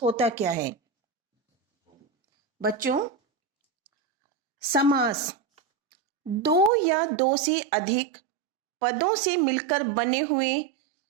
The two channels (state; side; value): drops out; left; at 6.7 s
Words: होता क्या है। बच्चों, समास दो या दो से अधिक पदों से मिलकर बने हुए